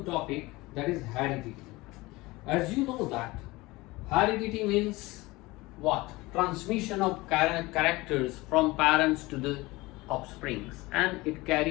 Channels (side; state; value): right; quieter; 21.3 dB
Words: topic, that is heredity. As you know that heredity means what? Transmission of characters from parents to the offsprings, and it